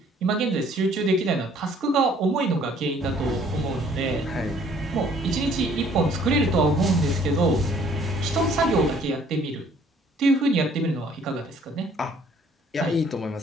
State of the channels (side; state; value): both; normal; correlation 0.59